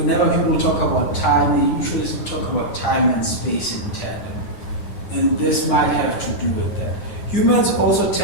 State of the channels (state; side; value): late; right; 9.9 ms